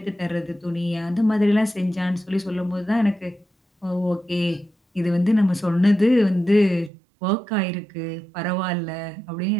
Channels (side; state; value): left; drops out; at 6.9 s